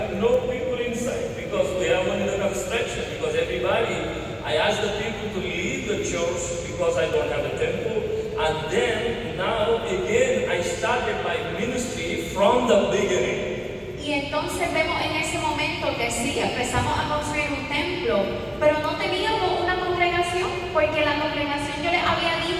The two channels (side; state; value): both; identical; correlation 1.00